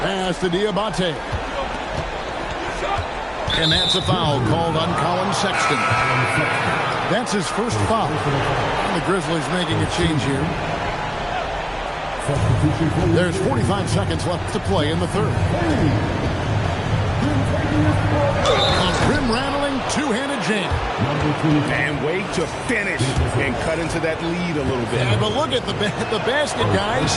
to Diabate. And that's a foul called on Colin Sexton. That's his first foul. And the Grizzlies making a change here. There's 45 seconds left to play in the third. A rim-rattling two-handed jam. And way to finish and cut into that lead a little bit. Yeah, but look at the basket guy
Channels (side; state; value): both; identical; correlation 1.00